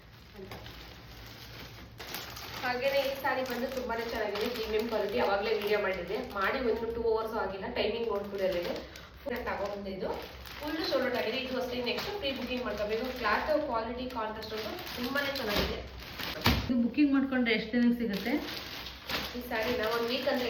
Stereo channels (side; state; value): both; identical; correlation 1.00